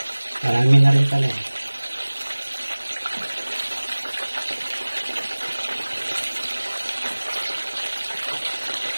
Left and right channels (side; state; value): both; inverted; correlation -1.00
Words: Marami na rin pala.